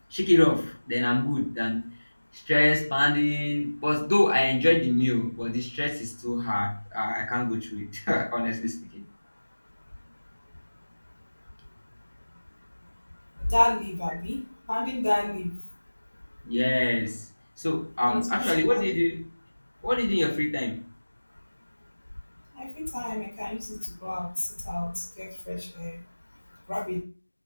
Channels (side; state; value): both; inverted; correlation -1.00